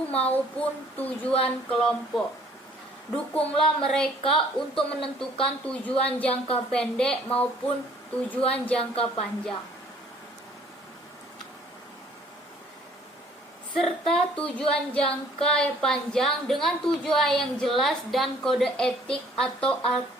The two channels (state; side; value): normal; both; correlation 0.58